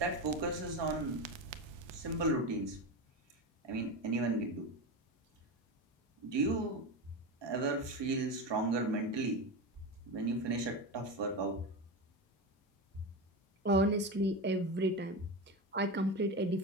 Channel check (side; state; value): both; normal; correlation 0.20